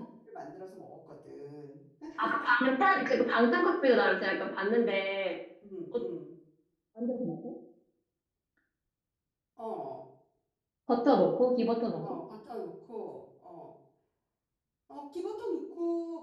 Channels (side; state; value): both; identical; correlation 1.00